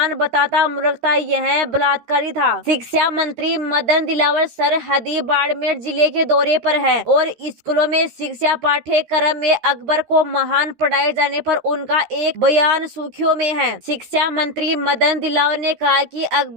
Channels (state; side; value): late; left; 13 ms